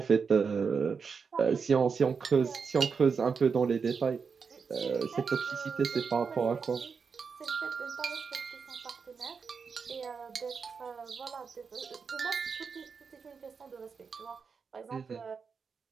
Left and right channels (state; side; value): quieter; left; 5.6 dB